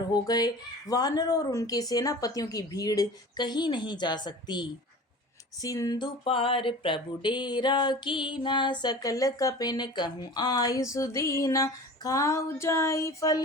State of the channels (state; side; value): normal; both; correlation 0.39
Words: हो गए। वानर और उनके सेनापतियों की भीड़ कहीं नहीं जा सकती। सिंधु पार प्रभु डेरा कीना, सकल कपिन कहूँ आयु सुदीना। खाऊ जाई